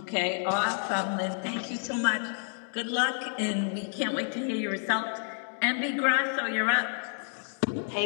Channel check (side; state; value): right; silent; 58 dB below the other